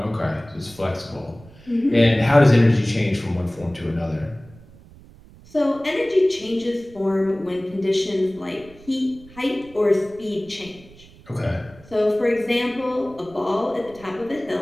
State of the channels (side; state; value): right; noise; rumble, 23 dB below the sound